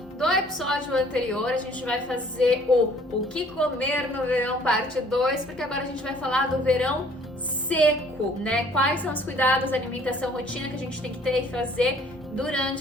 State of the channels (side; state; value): both; normal; correlation 0.57